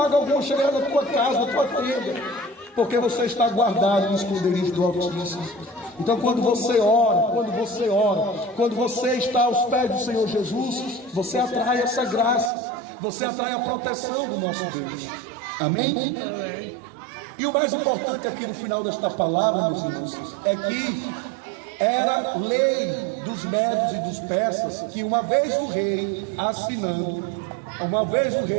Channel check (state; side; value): drops out; left; at 12.5 s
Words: alguma chegará na tua casa, na tua tenda, porque você está guardado no esconderijo do Altíssimo. Então, quando você ora, quando você está aos pés do Senhor Jesus, você atrai essa graça, você atrai a proteção do nosso Deus. Amém? E o mais importante aqui no final desta palavra, meus irmãos, é que era lei dos medos e dos persas que uma vez o rei assinando, uma vez o